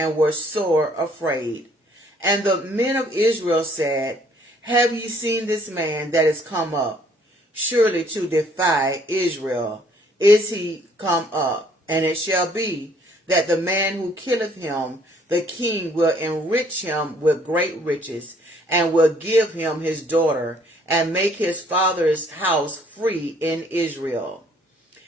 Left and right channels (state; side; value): normal; both; correlation 0.62